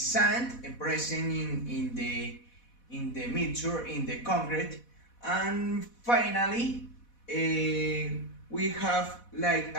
present in the mixture in the concrete. And finally, we have like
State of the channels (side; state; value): right; late; 4.1 ms